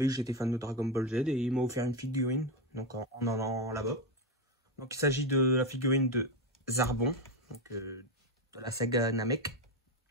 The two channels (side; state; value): both; normal; correlation 0.10